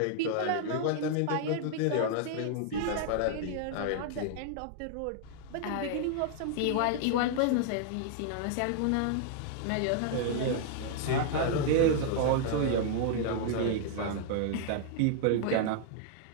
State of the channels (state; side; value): different; both; correlation -0.01